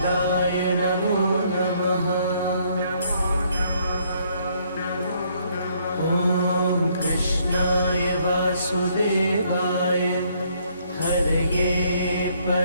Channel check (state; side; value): inverted; both; correlation -0.67